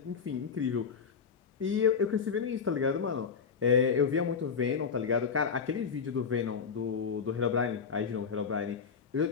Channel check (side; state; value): right; quieter; 6.1 dB